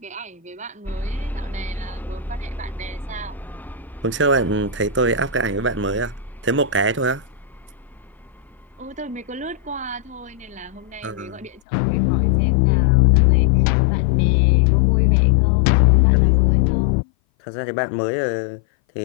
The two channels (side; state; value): right; drops out; at 11.6 s